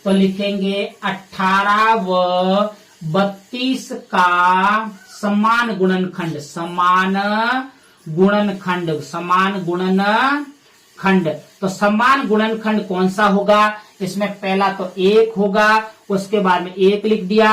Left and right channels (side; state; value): both; identical; correlation 1.00